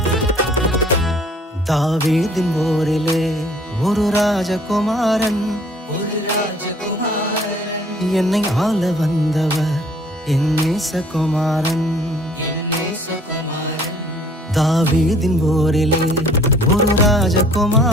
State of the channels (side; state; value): both; normal; correlation 0.56